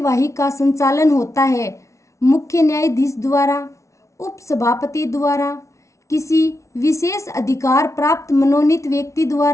का संचालन होता है मुख्य न्यायाधीश द्वारा, उपसभापति द्वारा, किसी विशेष अधिकार प्राप्त मनोनीत व्यक्ति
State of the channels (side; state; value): right; late; 0.14 ms